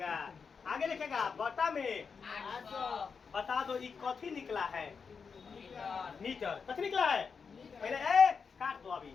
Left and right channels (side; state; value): right; quieter; 5.7 dB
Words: आगे लिखेगा बटा में बता दो ये कथी निकला है मीटर, कथी निकला है पहले काट दो अभी